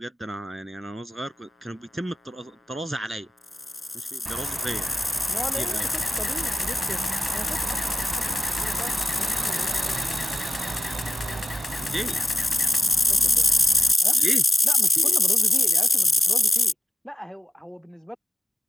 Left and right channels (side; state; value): both; normal; correlation 0.90